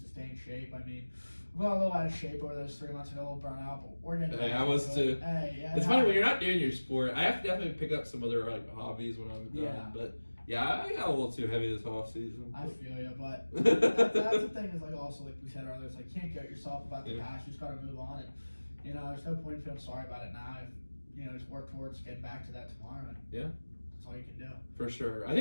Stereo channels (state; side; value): inverted; both; correlation -1.00